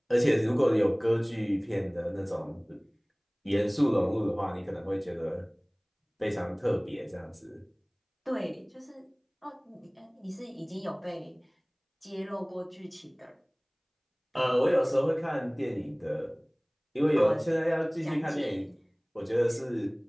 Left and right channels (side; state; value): both; identical; correlation 1.00